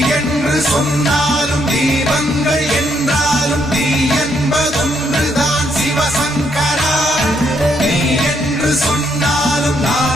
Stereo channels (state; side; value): normal; both; correlation 0.74